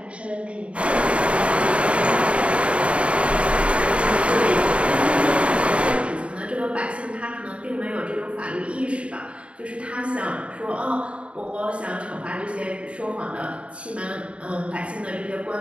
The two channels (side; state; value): left; late; 0.061 ms